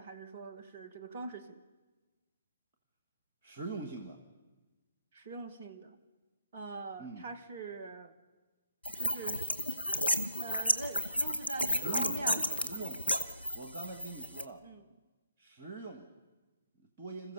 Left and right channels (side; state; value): both; inverted; correlation -0.68